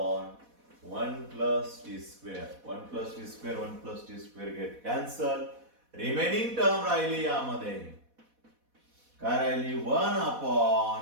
1 plus T square. 1 plus T square 1 plus T square get cancel. Remaining term राहिली यामध्ये काय राहिली 1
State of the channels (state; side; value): late; left; 4.1 ms